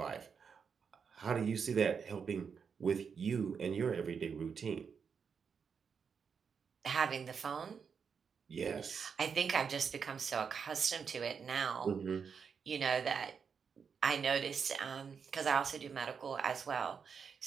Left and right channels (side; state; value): left; quieter; 6.3 dB